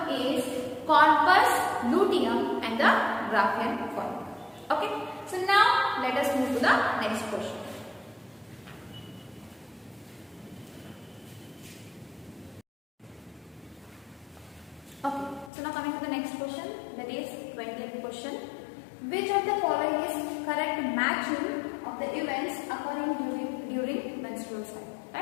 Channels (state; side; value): drops out; right; at 15.5 s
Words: is corpus luteum and the Graafian follicle. Okay, so now let us move to the next question. Okay, so now coming to the next question, that is 20th question. Which of the following is correct matching of the events occurring during menstrual cycle?